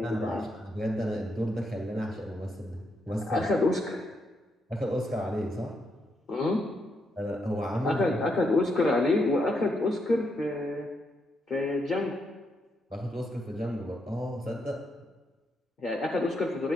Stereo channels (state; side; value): normal; both; correlation 0.79